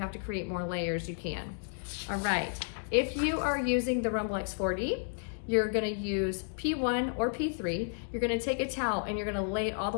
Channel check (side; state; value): right; silent; digital silence